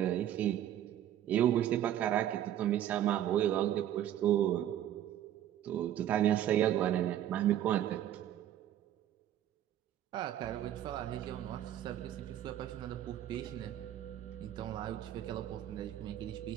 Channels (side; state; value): left; quieter; 11.6 dB